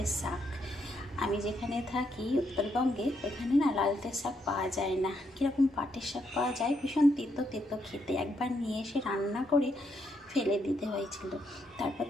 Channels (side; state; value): both; normal; correlation 0.77